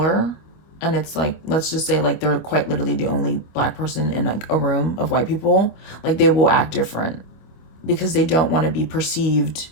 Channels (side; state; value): right; late; 25 ms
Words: and it's like, let's just say like they're quite literally the only black person in like a room of white people, like they will act different because they don't want to be perceived